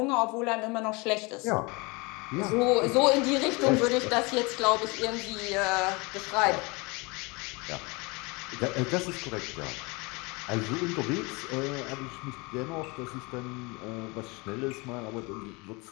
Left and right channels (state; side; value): quieter; right; 27.1 dB